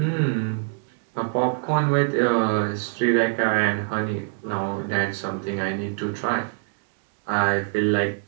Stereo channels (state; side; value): silent; left; digital silence